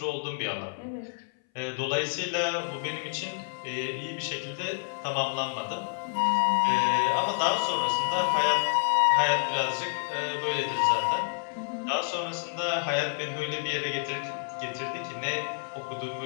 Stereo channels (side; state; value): right; silent; 59 dB below the other